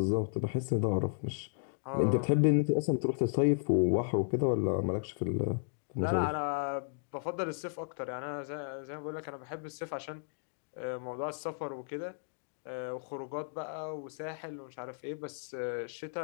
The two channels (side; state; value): right; silent; digital silence